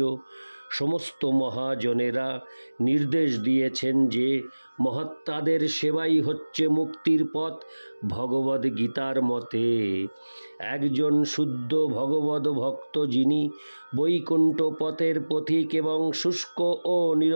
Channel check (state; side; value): inverted; both; correlation -1.00